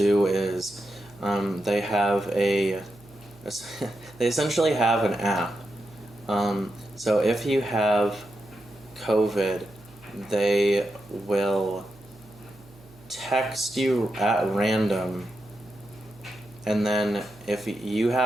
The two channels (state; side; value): noise; right; hum, 24 dB below the sound